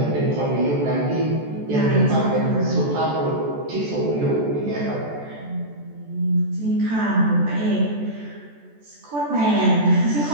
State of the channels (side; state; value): left; late; 14 ms